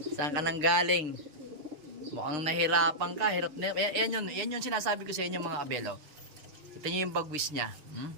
Saan ka nang galing? Mukhang nahirapan ka. Hirap na. Yan yun sinasabi ko sa inyo mga kabelo. Kita nyo yung bagwis niya.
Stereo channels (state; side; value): late; left; 6.6 ms